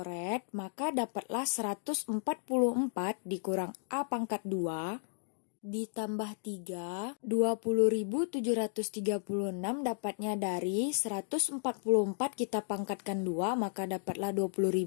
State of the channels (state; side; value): silent; right; digital silence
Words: maka dapatlah 144 dikurang A pangkat 2 ditambah 3, 20.736 dapatnya dari 144 kita pangkatkan 2, maka dapatlah